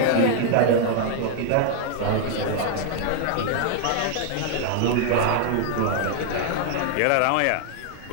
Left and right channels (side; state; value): both; different; correlation 0.00